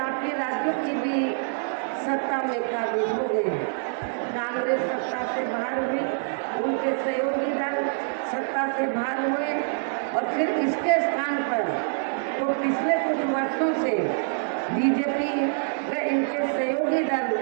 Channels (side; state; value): left; silent; digital silence